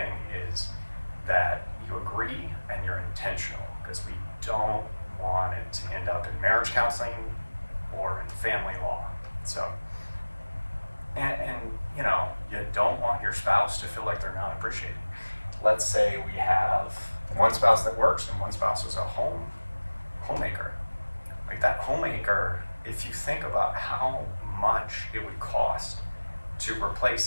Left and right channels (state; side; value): inverted; both; correlation -1.00